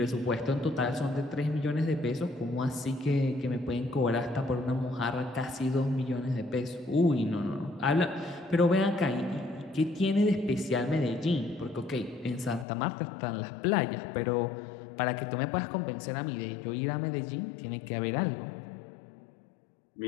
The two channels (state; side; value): drops out; right; at 12.7 s